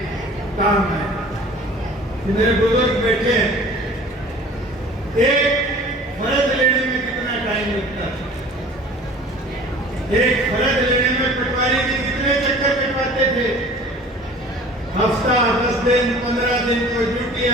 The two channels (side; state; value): both; normal; correlation 0.45